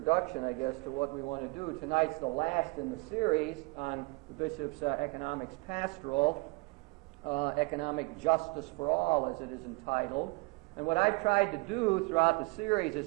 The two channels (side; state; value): left; quieter; 27.6 dB